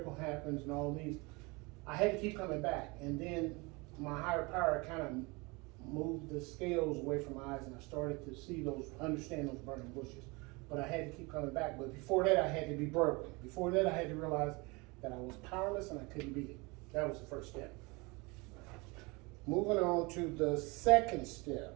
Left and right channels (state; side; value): quieter; left; 26.4 dB